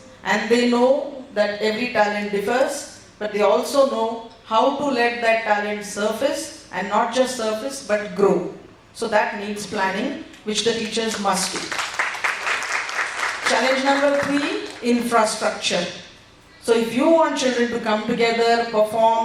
And they know that every talent differs, but they also know how to let that talent surface, and not just surface, but grow. So that needs planning, which the teachers must do. Challenge number 3, infrastructure. So if you want children to come together,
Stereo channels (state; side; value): identical; both; correlation 1.00